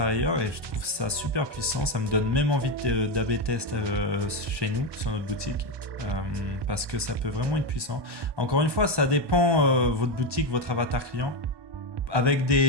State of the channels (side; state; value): left; late; 1.2 ms